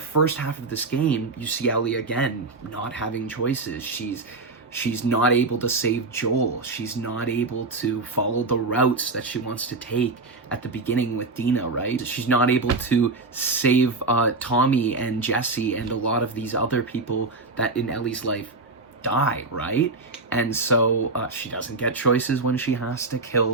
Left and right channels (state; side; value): quieter; left; 3.6 dB